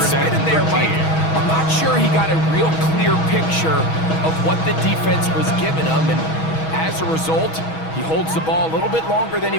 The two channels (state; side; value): late; right; 6.2 ms